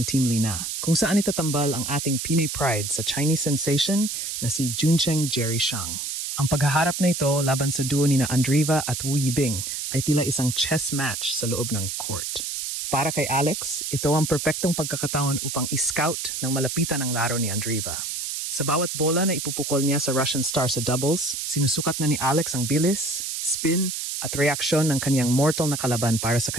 Team Lina, kung saan itatambal ang ating Pinay Pride sa Chinese sensation na si Juncheng Jerry Shang. Ang paghaharap na ito laban sa duo nina Andreeva at Wu Yibing ay tila isang chess match sa loob ng court. Para kay Alex, ito ang perpektong pagkakataon upang i-scout ng malapitan ang laro ni Andreeva. Sa bawat bola na ipupukol niya sa Russian star sa doubles, sinusukat na ni Alex ang bilis, spin, at reaksyon ng kaniyang mortal na kalaban para sa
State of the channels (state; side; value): noise; right; hiss, 4 dB below the sound